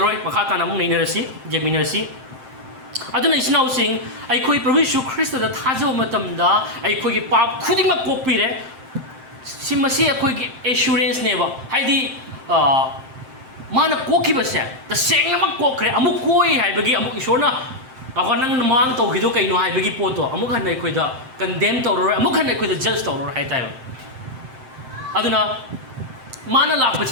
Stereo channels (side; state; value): left; late; 7.7 ms